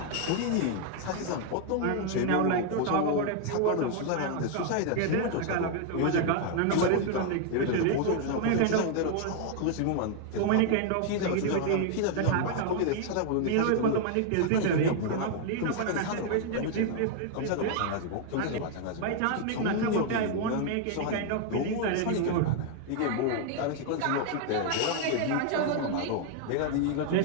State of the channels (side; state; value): both; different; correlation 0.00